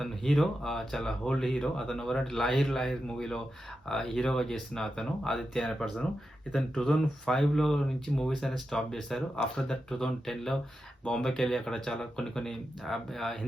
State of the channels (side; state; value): both; normal; correlation 0.89